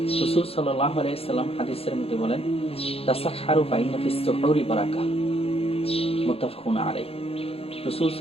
রাসূল সাল্লাল্লাহু আলাইহি সাল্লাম হাদিসের মধ্যে বলেন, তাসাহহারু ফাইন্না ফিস সুহুরি বারাকা, মুত্তাফাকুন আলাইহি। রাসূল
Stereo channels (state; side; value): late; right; 0.28 ms